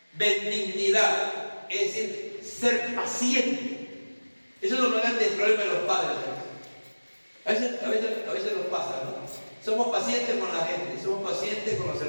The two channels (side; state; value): both; inverted; correlation -1.00